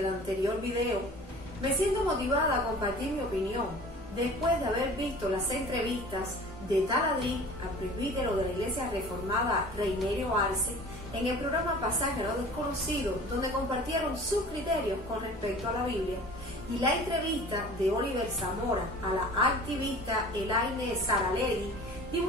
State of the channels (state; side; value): normal; both; correlation 0.44